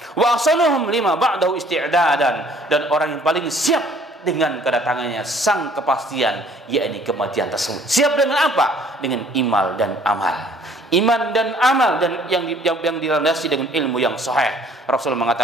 Wa asanuhum lima ba'dahu isti'dadan. Dan orang yang paling siap dengan kedatangannya sang kepastian, yakni kematian tersebut. Siap dengan apa? Dengan iman dan amal. Iman dan amal, dan yang dilandasi dengan ilmu yang sahih. Rasulullah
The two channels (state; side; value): normal; both; correlation 0.57